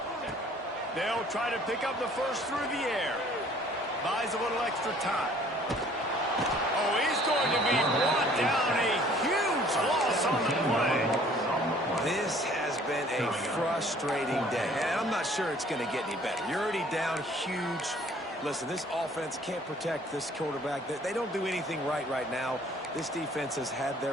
They'll try to pick up the first through the air. Buys a little extra time. Oh, he's going to be brought down. A huge loss on the play. This has been a frustrating day, and I'm not sure it's going to get any better. You're already down huge. Listen, this offense can't protect this quarterback. They don't do anything right now. This defense has had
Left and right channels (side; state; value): both; normal; correlation 0.56